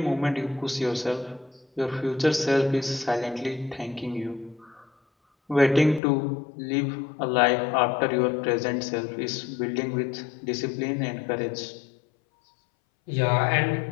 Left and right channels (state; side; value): drops out; right; at 6.0 s